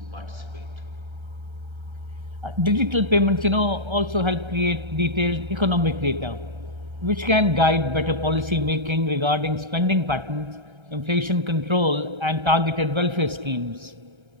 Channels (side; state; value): left; late; 1.3 ms